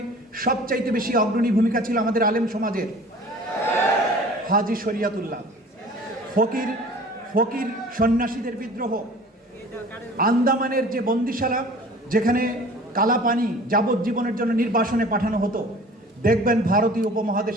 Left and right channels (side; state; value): both; normal; correlation 0.45